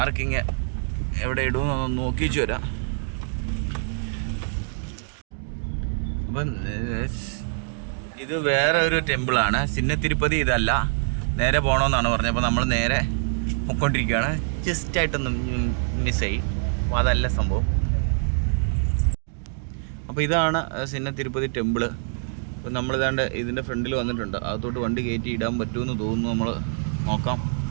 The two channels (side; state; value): left; silent; digital silence